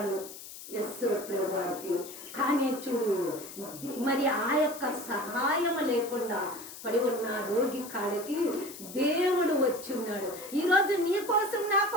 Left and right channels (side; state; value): left; noise; hiss, 13 dB below the sound